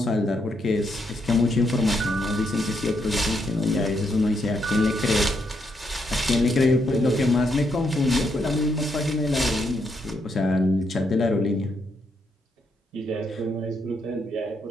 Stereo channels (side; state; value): both; normal; correlation 0.78